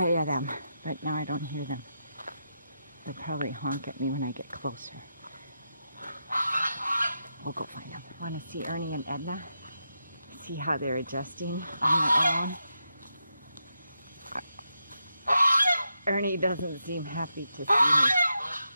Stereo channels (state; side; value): inverted; both; correlation -0.86